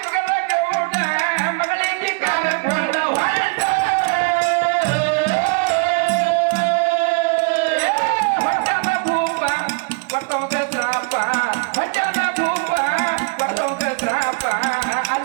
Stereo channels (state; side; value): quieter; left; 32.4 dB